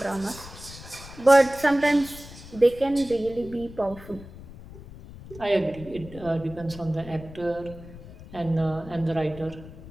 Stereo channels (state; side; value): noise; left; rumble, 16 dB below the sound